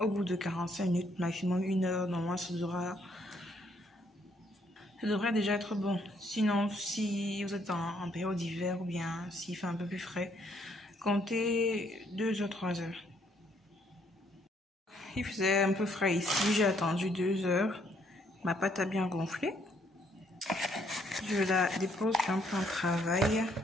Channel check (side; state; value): both; normal; correlation 0.69